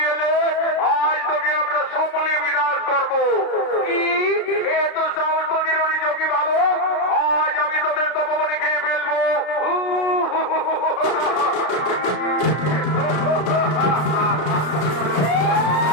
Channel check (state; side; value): late; right; 33 ms